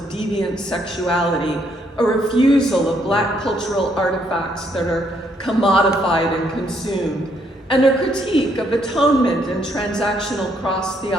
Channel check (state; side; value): normal; both; correlation 0.71